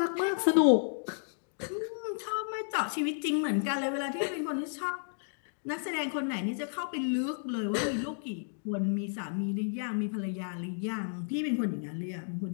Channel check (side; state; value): right; silent; digital silence